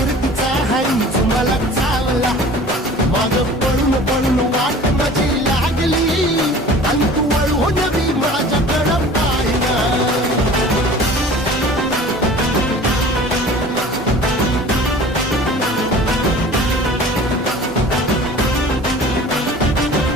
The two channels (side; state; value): both; normal; correlation 0.43